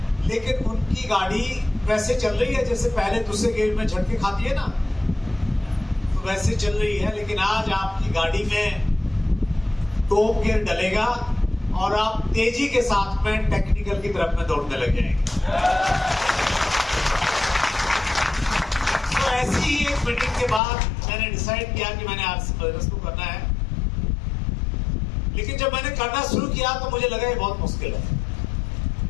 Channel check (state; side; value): drops out; right; at 20.6 s